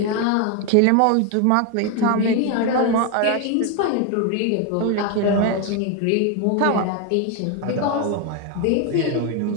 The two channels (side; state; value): both; different; correlation 0.01